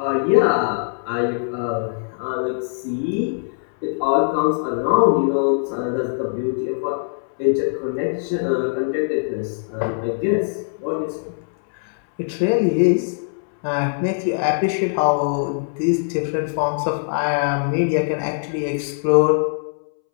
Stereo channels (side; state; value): right; silent; 65 dB below the other